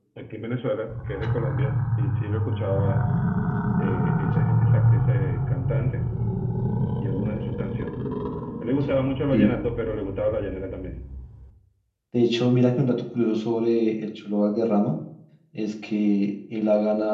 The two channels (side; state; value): both; identical; correlation 1.00